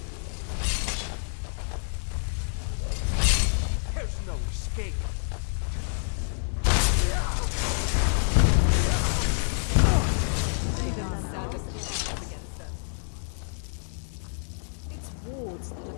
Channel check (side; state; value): right; silent; 60 dB below the other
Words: There's no escape. Stay gone now. It's wards that are the